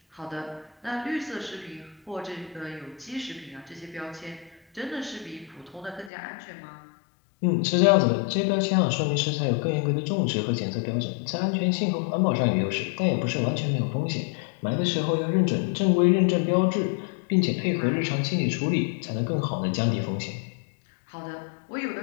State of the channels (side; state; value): right; drops out; at 6.1 s